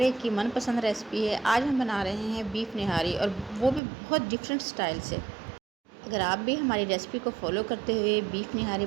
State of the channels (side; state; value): left; drops out; at 3.8 s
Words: एक की मनपसंद रेसिपी है। आज हम बना रहे हैं बीफ निहारी, और वो भी बहुत डिफरेंट स्टाइल से। अगर आप भी हमारी रेसिपी को फॉलो करते हुए बीफ निहारी